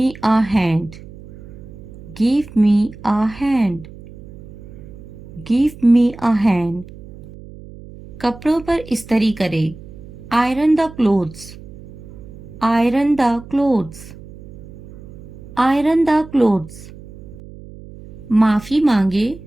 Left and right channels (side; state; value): right; noise; hum, 17 dB below the sound